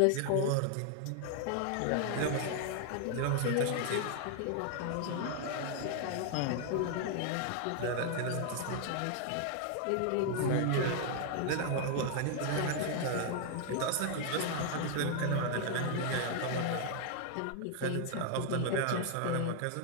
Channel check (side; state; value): both; different; correlation 0.00